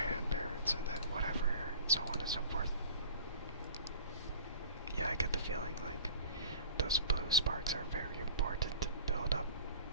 parrots, and then whatever, so on and so forth. Yeah, I get the feeling like those blue sparks are very important to build up,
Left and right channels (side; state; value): both; inverted; correlation -0.42